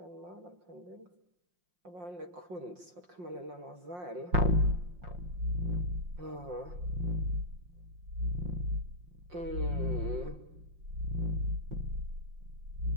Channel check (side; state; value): left; late; 5.6 ms